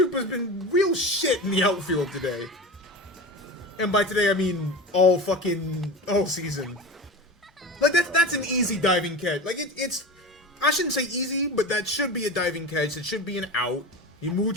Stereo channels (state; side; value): normal; both; correlation 0.29